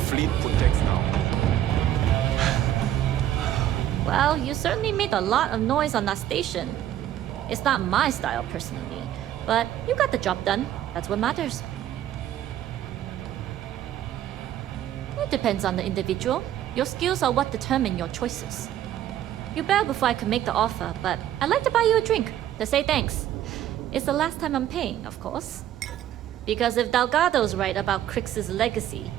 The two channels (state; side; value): quieter; left; 11.9 dB